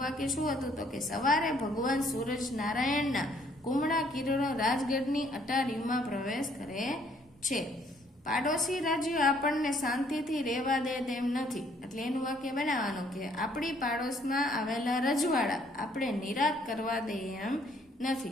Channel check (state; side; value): normal; both; correlation 0.64